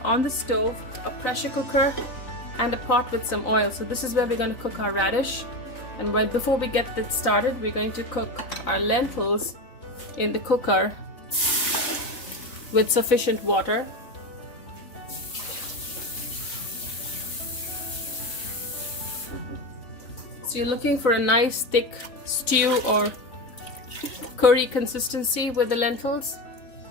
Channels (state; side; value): late; right; 3.9 ms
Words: on the stove a pressure cooker and a pot with some oil. So this is where we're going to cook our radish. And before we get that started, we're going to cook our lentils in the cooker with sufficient water. So you're looking for a nice thick stew or curry consistency with the lentils,